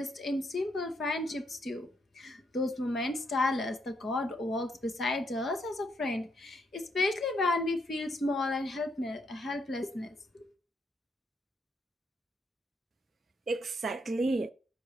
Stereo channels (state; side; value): normal; both; correlation 0.75